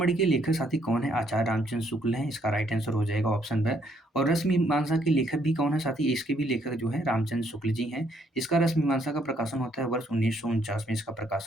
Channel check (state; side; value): normal; both; correlation 0.69